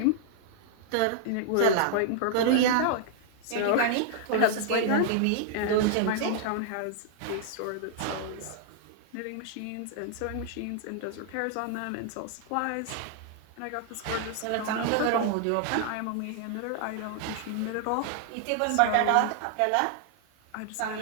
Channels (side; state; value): both; different; correlation -0.01